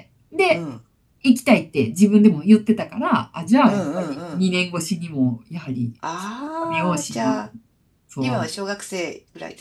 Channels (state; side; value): identical; both; correlation 1.00